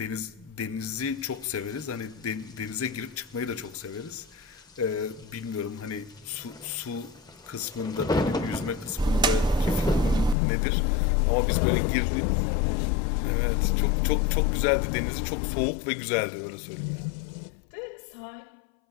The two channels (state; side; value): drops out; right; at 10.4 s